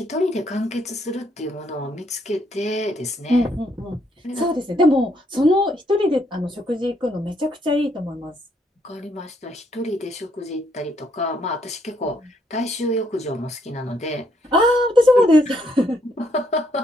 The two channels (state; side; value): normal; both; correlation 0.72